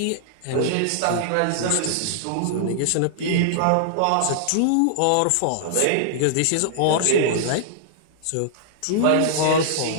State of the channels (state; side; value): different; both; correlation -0.01